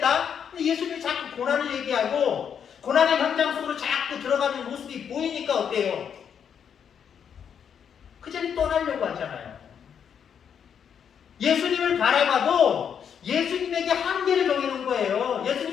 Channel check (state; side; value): quieter; right; 7.8 dB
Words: 근데 예수님이 자꾸 고난을 얘기하고 고난의 현장 속으로 자꾸 들어가는 모습이 보이니까 어때요? 그 자리 떠나려고 하잖아요. 예수님을 바라봐도 예수님에게 한계를 정해놓은 거예요.